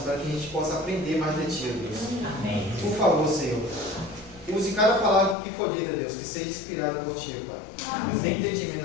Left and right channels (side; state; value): right; drops out; at 5.4 s